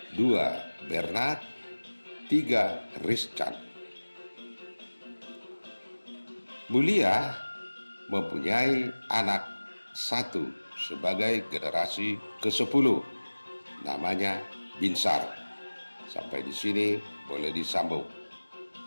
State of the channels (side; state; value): both; inverted; correlation -1.00